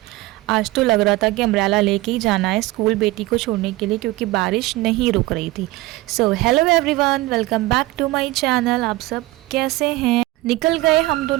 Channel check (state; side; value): quieter; left; 19.3 dB